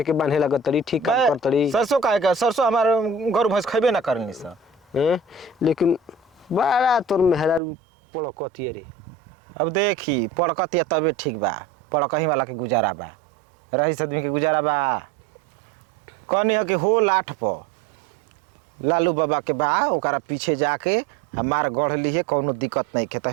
के बांधे लगत तड़ी ठीक काम कर तड़ी सरसों काहे का सरसों हमार गरु भैंस खइबे ना करनी स हैं लेकिन बड़ा तोर मेहरारू पड़कती रे अब देखी पड़कतिया तबे ठीक बा पड़कही वाला के गुजारा बा रईस आदमी के गुजारा बा कहनी है कि हो लाठ प लालू बाबा के बा ओकरा पीछे जाके हमार गढ़ ली कोनो दिक्कत नहीं के त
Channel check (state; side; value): drops out; left; at 7.6 s